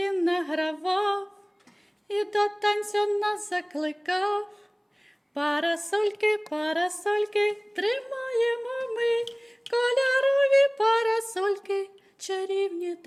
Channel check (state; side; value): identical; both; correlation 1.00